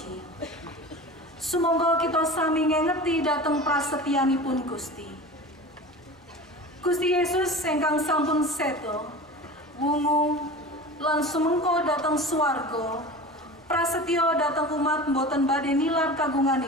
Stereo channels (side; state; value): both; normal; correlation 0.34